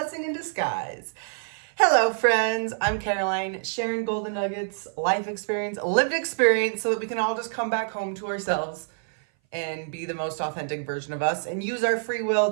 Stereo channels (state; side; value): silent; left; 58 dB below the other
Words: in disguise. Hello, friends. I'm Caroline, sharing golden nuggets, life experience, lived experience, so that we can all just come back home to ourselves and be the most authentic version of us and use our free will